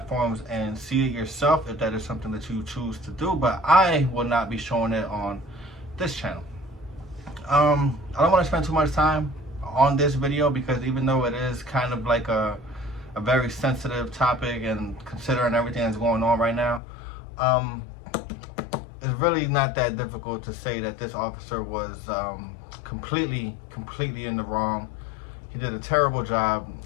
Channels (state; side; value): drops out; right; at 16.8 s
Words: and see it yourself if that is something that you choose to do. But I will not be showing it on this channel. I don't want to spend too much time on this video because even though it is kind of like a very sensitive topic and considering everything that's going on right now, it's really not that difficult to say that this officer was completely in the wrong. He did a terrible job,